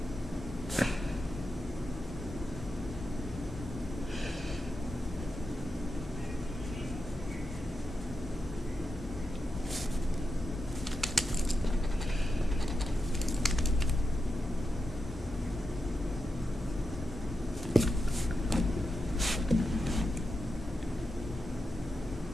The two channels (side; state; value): both; normal; correlation 0.88